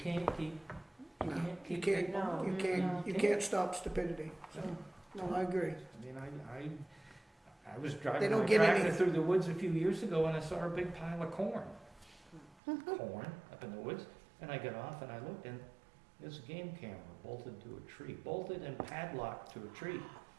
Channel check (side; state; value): left; drops out; at 12.6 s